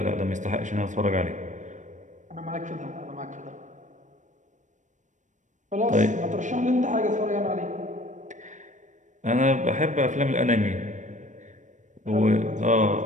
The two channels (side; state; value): left; late; 0.36 ms